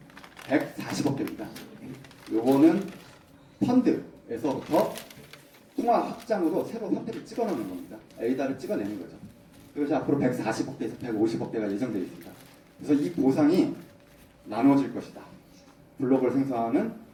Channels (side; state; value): both; identical; correlation 1.00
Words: 140억 개입니다. 요거는 펀드에서부터 통화 확장으로 새로 화폐를 찍어넣는 겁니다. 에이다를 찍어내는 거죠. 그래서 앞으로 140억 개에서 150억 개가 예정되어 있습니다. 그래서 이 보상이 나눠질 것이다. 블록을 생성하는